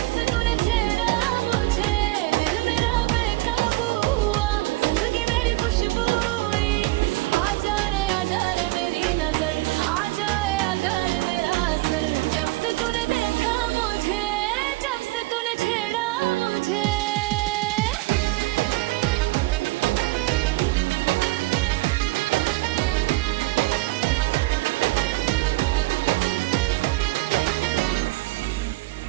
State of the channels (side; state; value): left; quieter; 21.0 dB